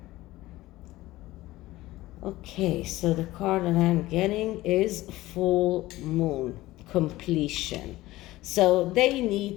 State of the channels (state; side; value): quieter; right; 17.4 dB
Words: Okay, so the card that I'm getting is full moon, completion. So they